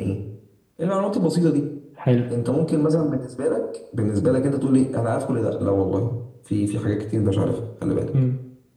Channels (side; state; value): both; identical; correlation 1.00